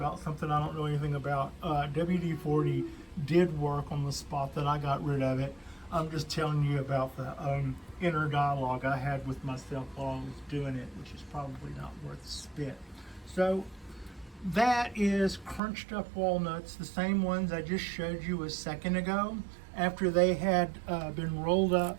something I don't know anything about. WD-40 did work on the spot that I got rid of it. I'm just telling you about the inner dialogue I had with myself while I was doing it, which is probably not worth spit. So that is crunched up walnuts, the same ones I just showed you a second ago, after they had been rolled up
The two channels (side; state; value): left; drops out; at 15.6 s